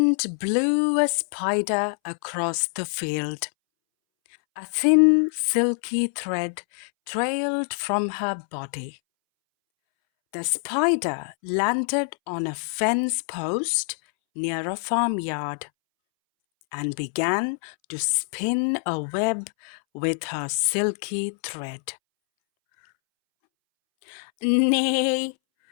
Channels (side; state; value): right; silent; 62 dB below the other